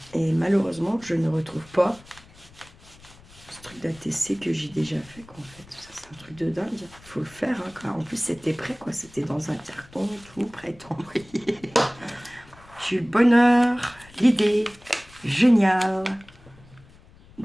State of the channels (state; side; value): noise; left; rumble, 24 dB below the sound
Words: malheureusement, je ne retrouve pas ce truc d'ATC que j'ai déjà fait. Quoi, en fait, ça c'est un truc de dingue. Il faut le faire. Hein, quoi. En plus, c'était prêt, quoi. C'était dans un carton, tout prêt à envoyer. J'ai eu le bonheur, l'idée génial